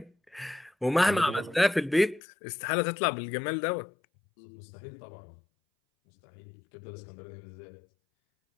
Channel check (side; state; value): right; drops out; at 2.2 s